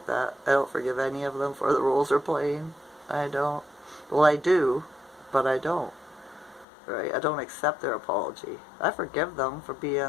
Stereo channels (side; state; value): right; drops out; at 6.7 s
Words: that. I don't forgive any of them for the roles they're playing. I don't. Well, I do, but I don't. Right? I don't accept their apology. I forgive them for